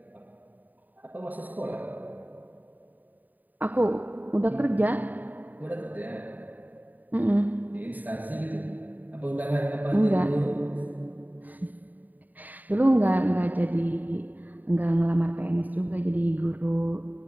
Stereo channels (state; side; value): late; left; 0.085 ms